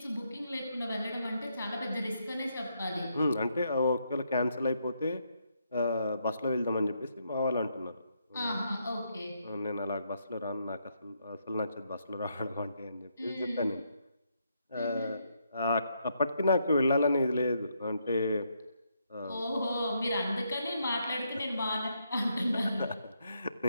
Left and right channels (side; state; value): both; inverted; correlation -0.77